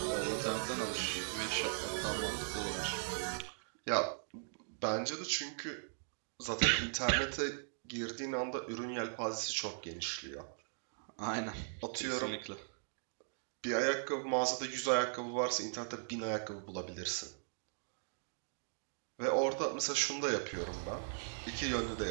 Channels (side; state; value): left; silent; digital silence